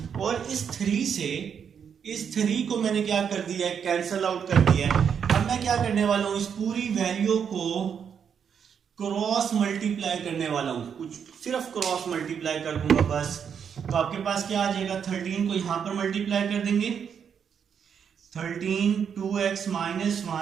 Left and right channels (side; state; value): left; quieter; 7.4 dB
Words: और इस 3 को मैंने क्या कर दिया है, कैंसल आउट कर दिया है। अब मैं क्या करने वाला हूं, इस पूरी वैल्यू को क्रॉस मल्टीप्लाई करने वाला हूं, कुछ सिर्फ क्रॉस मल्टीप्लाई कर दूंगा बस। तो आपके पास क्या आ जाएगा, 13 को यहां पर मल्टीप्लाई कर देंगे, 13 2x माइनस